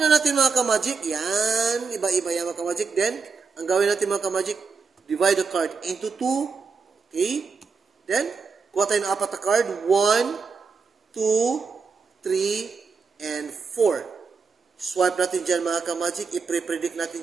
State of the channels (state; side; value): quieter; left; 5.2 dB